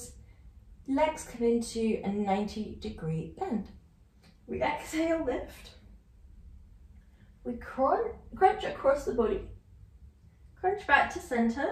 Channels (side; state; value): both; identical; correlation 1.00